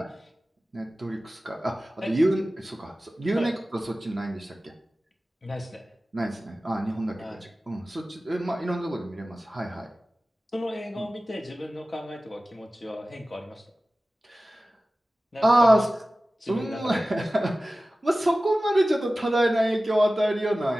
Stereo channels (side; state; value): both; normal; correlation 0.96